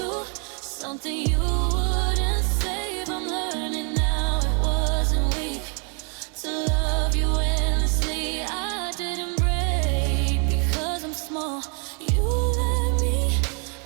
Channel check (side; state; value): left; quieter; 37.6 dB